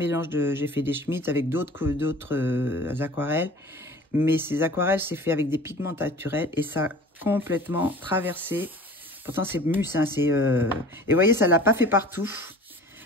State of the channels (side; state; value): both; normal; correlation 0.44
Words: j'ai fait des Schmitt avec d'autres aquarelles. Mais ces aquarelles, c'est fait avec des pigments naturels et ça a complètement traversé. Pourtant, c'est Mus. Hein, et vous voyez, ça ne l'a pas fait partout.